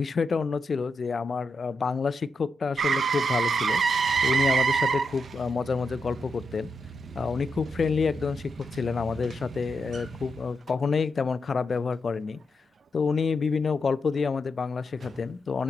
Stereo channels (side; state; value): both; normal; correlation 0.84